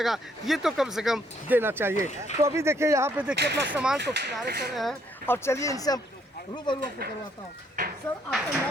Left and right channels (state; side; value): normal; both; correlation 0.69